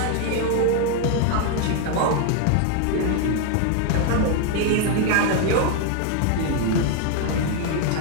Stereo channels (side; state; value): both; different; correlation 0.00